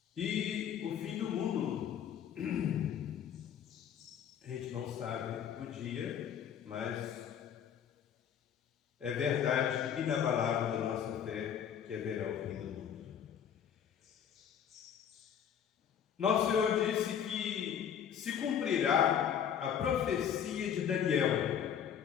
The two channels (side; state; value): right; quieter; 8.6 dB